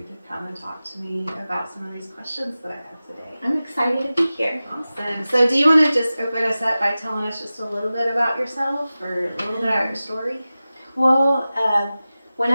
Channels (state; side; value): inverted; both; correlation -0.96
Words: to come and talk to me about some of these questions that I have today. I'm excited to be here. Awesome. So do you want to just open us up by telling us just a little bit about yourself or a little bit about your story? Well,